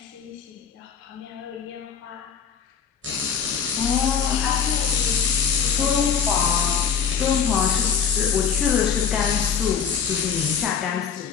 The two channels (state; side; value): quieter; right; 7.1 dB